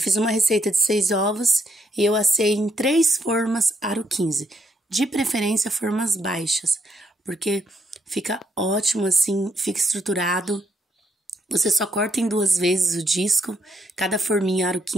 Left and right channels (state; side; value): normal; both; correlation 0.74